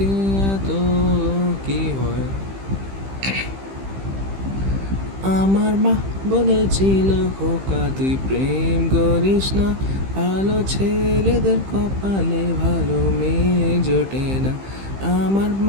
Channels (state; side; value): late; left; 15 ms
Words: এত কি হয়। আমার মা বলেছিল, খোকা তুই প্রেম করিস না, ভালো ছেলেদের কপালে ভালো মেয়ে জোটে না। আমার